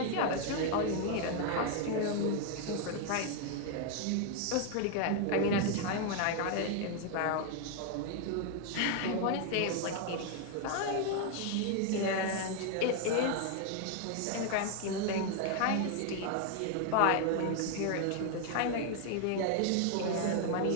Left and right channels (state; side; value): different; both; correlation 0.00